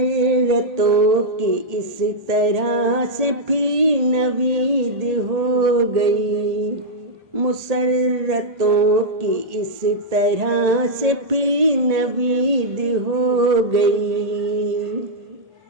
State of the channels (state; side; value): late; left; 1.8 ms